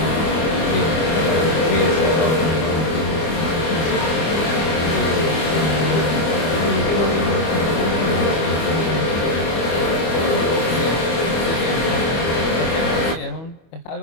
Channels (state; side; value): late; right; 25 ms